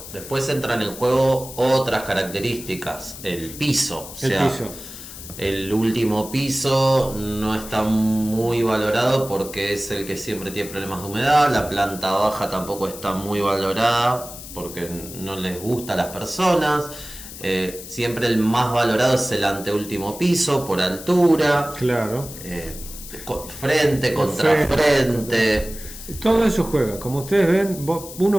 Después entran en juego otras características, el piso. El último piso no está muy valorado porque es el que siempre tiene problemas de humedad. La planta baja tampoco está muy valorada porque no les gusta a las personas. Siempre el más valorado es el anteúltimo piso por altura. Claro. Frente contra frente. Todo eso juega. Como ustedes ven,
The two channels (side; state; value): left; noise; hiss, 13 dB below the sound